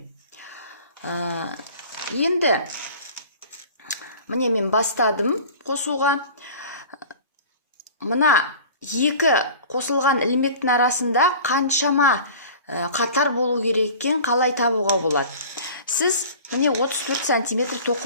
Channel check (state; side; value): inverted; both; correlation -0.42